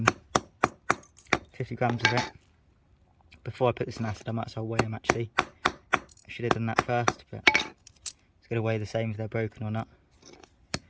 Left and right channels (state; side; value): identical; both; correlation 1.00